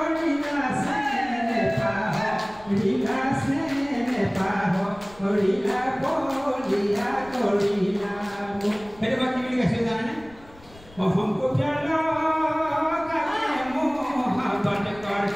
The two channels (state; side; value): noise; left; rumble, 23 dB below the sound